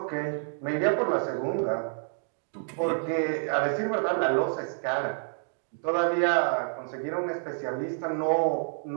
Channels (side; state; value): left; silent; digital silence